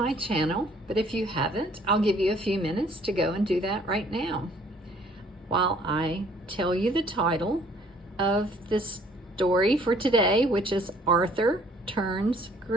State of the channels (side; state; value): both; normal; correlation 0.59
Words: channel, but if you haven't, I'll give you a few minutes to go and do that right now. While I tell you the title of this story for today, which is Arthur Turns